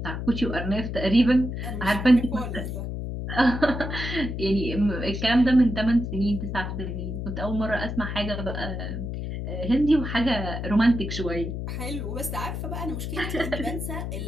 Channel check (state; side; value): noise; left; hum, 5 dB below the sound